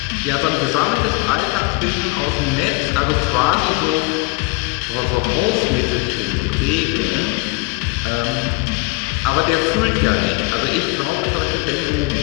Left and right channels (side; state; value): right; quieter; 25.6 dB